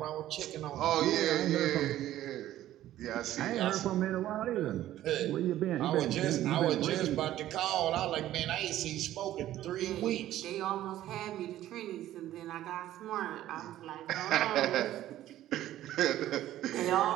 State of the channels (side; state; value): left; quieter; 13.5 dB